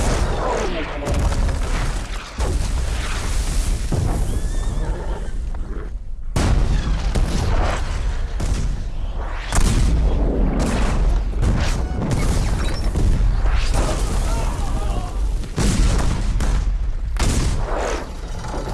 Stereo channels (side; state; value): both; identical; correlation 1.00